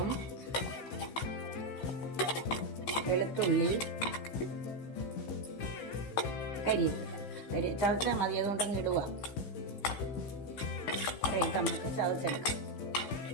വെളുത്തുള്ളി, കരിവേപ്പില ചതച്ചാൽ മതി. അതുകൊണ്ടങ്ങ് ഇടുക. ഇട്ട് നമുക്ക് ചതച്ചെടുക്കാം.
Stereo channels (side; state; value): right; late; 15 ms